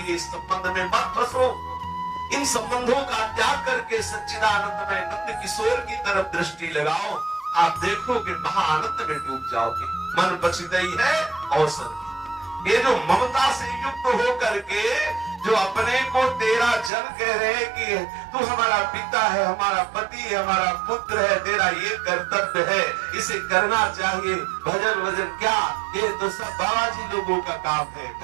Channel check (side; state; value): left; drops out; at 16.9 s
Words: इस संबंध में मत फंसो। इन संबंधों का त्याग करके सच्चिदानंद में नंद किशोर की तरफ दृष्टि लगाओ, आप देखोगे महाआनंद में डूब जाओगे। मन बचितई है अवसर। ये जो ममता से युक्त होकर के जो अपने को तेरा जन कह रहे हैं कि तू हमारा पिता है, हमारा पति है, हमारा पुत्र है, तेरा ये कर्तव्य है, इसे करना चाहिए। भजन वजन क्या, ये तो सब बाबाजी लोगों का काम है।